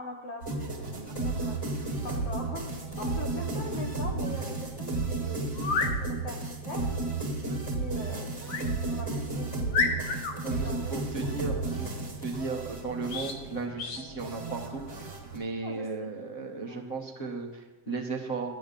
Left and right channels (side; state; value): right; late; 7.5 ms